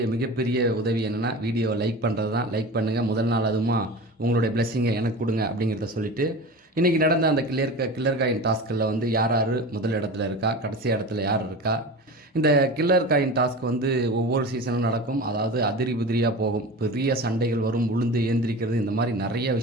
மிகப்பெரிய உதவி என்னென்னா வீடியோவை லைக் பண்ணுறது தான். லைக் பண்ணுங்கள். முதல் நாள் அதுமா உங்களுடைய பிளெஸ்ஸிங்கை எனக்கு கொடுங்க அப்படிங்கிறத சொல்லிவிட்டு இன்றைக்கி நடந்த அந்த கில்லர் காயின் டாஸ்கில் வந்து யார் முதல் இடத்துல இருக்கா, கடைசி இடத்துல யார் இருக்கா. இந்த கில்லர் காயின் டாஸ்க் வந்து ஒவ்வொரு சீசனும் நடக்கும். அதாவது அதிரி புதிரியாக போகும். பெரிய சண்டைகள் வரும், உளுந்து ஏந்திரிக்கிறது, இந்த மாதிரி நிறைய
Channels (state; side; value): normal; both; correlation 0.32